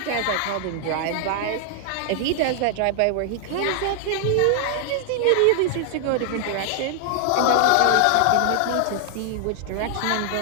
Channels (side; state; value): both; different; correlation 0.00